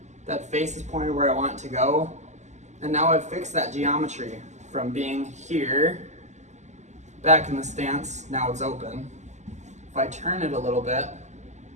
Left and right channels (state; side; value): late; left; 0.34 ms